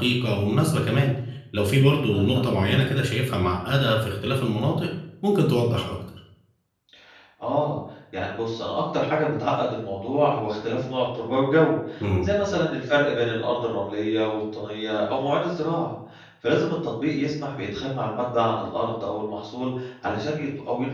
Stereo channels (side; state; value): both; identical; correlation 1.00